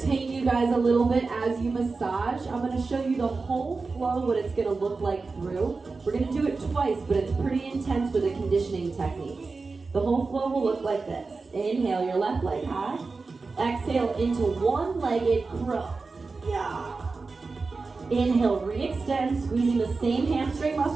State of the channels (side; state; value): left; quieter; 4.1 dB